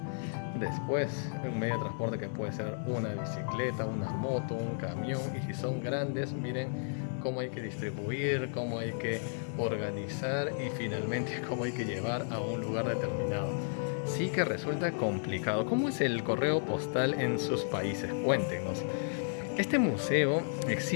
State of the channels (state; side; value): silent; right; 56 dB below the other